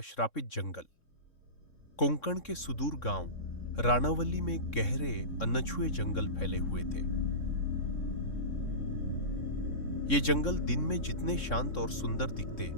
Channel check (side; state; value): right; late; 3.6 ms